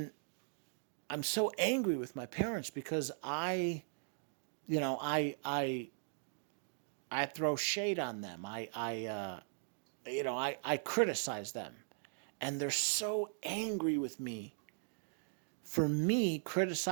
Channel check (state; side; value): silent; left; digital silence